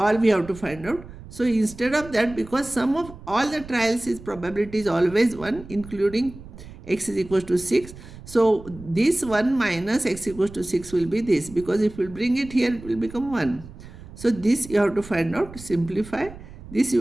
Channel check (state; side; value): noise; right; rumble, 16 dB below the sound